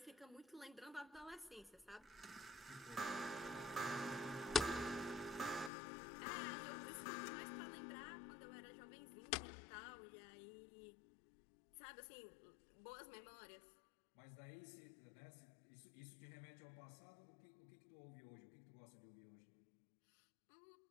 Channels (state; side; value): drops out; right; at 5.7 s